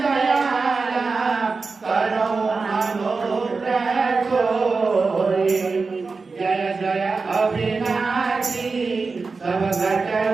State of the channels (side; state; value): left; quieter; 4.3 dB